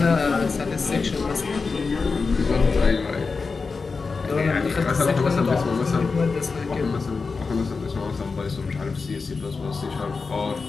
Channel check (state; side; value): quieter; right; 4.5 dB